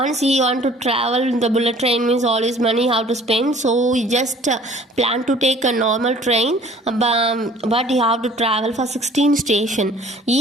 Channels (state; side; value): normal; both; correlation 0.52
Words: he want to travel, the bullet train means all his money how to spend, so he just planned to take a normal train, but he have to travel for 16 stations.